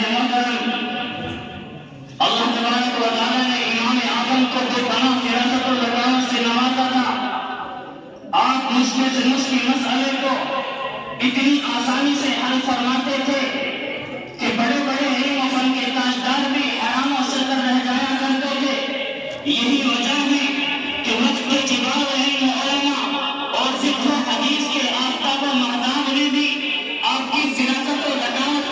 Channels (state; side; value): identical; both; correlation 1.00